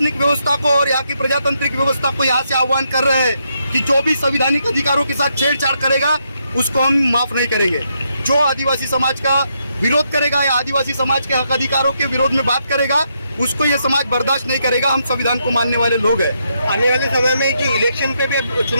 व्यवस्था को और यहाँ की प्रजातांत्रिक व्यवस्था को यहाँ से आह्वान कर रहे हैं कि जो भी संवैधानिक अधिकारों के साथ छेड़छाड़ करेगा उसको हम माफ नहीं करेंगे। जो आदिवासी समाज का विरोध करेगा या आदिवासी समाज के हक अधिकारों के विरोध में बात करेगा, उसको ये समाज बर्दाश्त नहीं करेगा। हम संविधान को मानने वाले लोग हैं। आने वाले समय में जो इलेक्शन पे भी,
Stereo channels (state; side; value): inverted; both; correlation -0.79